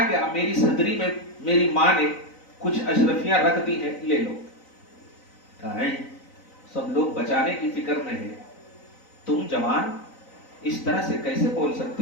کہ میری صدری میں میری ماں نے کچھ اشرفیاں رکھ دی ہیں، لے لو. کہا سب لوگ بچانے کی فکر میں ہے، تم جوان اس طرح سے کیسے بول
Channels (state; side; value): late; right; 3.9 ms